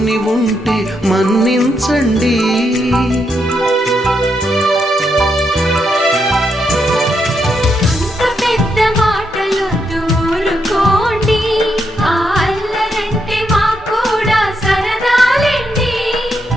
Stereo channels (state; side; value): normal; both; correlation 0.80